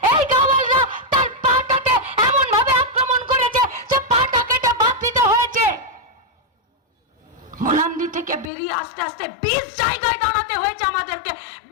এই গাওয়ালরা তার পাটাতে এমন ভাবে আক্রমণ করেছে যে পাটা কেটে বাদ দিতে হয়েছে। মোলান্দি থেকে বেরিয়ে আস্তে আস্তে 20 জায়গায় দাঁড়াতে হয়েছে আমাদেরকে,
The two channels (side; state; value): right; drops out; at 8.5 s